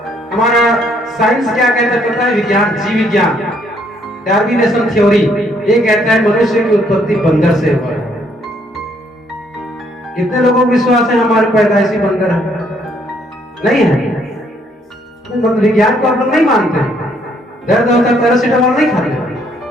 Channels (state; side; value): normal; both; correlation 0.68